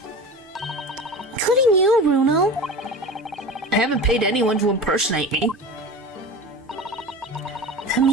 Including you, Bruno. I haven't paid anyone to impersonate me. That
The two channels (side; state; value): both; normal; correlation 0.33